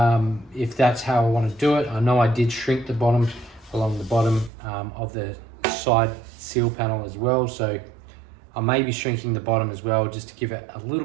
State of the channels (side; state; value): left; drops out; at 4.5 s